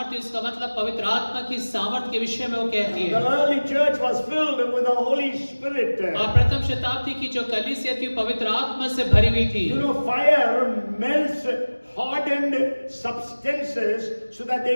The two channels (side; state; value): both; inverted; correlation -1.00